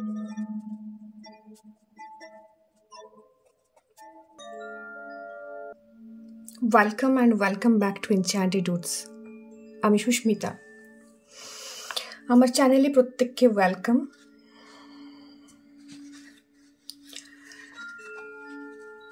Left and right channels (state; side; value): identical; both; correlation 1.00